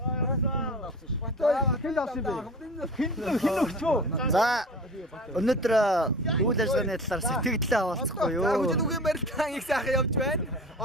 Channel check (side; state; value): both; normal; correlation 0.37